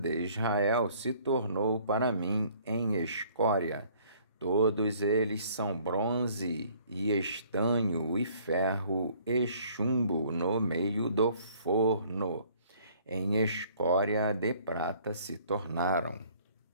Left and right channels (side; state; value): both; inverted; correlation -0.58